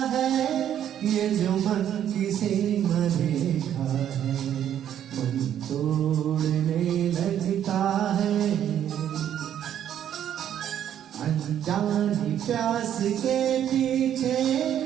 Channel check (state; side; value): quieter; left; 10.2 dB